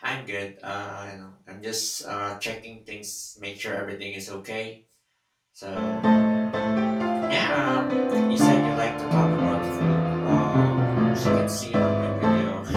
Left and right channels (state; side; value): identical; both; correlation 1.00